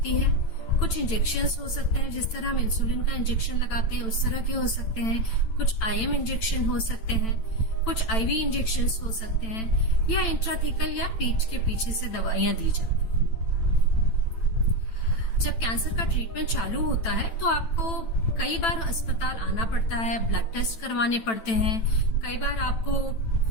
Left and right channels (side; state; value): right; late; 9.0 ms